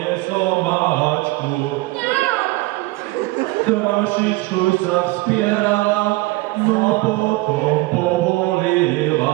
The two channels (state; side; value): quieter; left; 20.9 dB